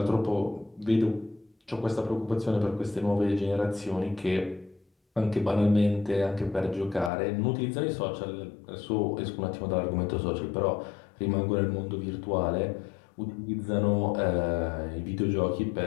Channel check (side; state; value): right; drops out; at 7.1 s